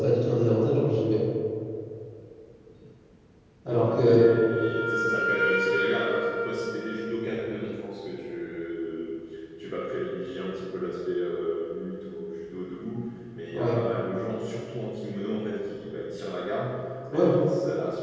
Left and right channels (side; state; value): both; identical; correlation 1.00